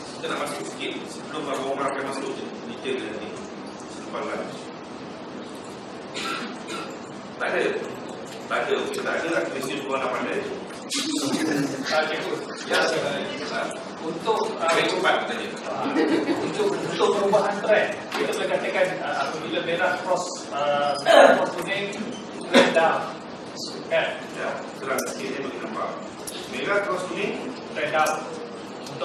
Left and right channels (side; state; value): both; identical; correlation 1.00